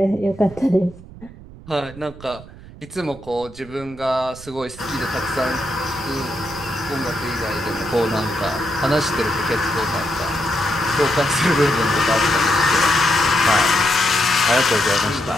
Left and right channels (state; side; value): noise; right; rumble, 18 dB below the sound